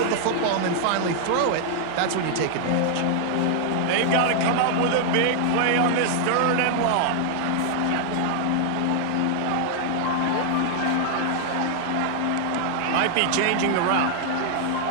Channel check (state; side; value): different; both; correlation -0.01